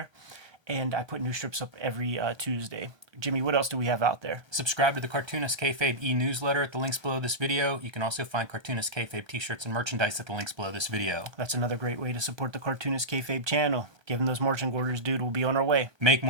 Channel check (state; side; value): late; left; 1.3 ms